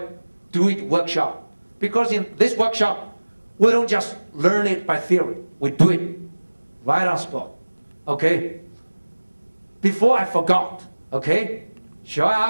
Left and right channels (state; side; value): inverted; both; correlation -1.00